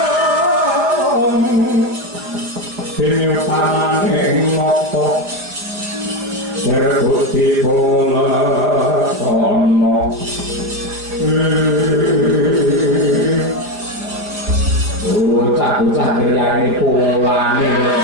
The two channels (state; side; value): late; left; 5.0 ms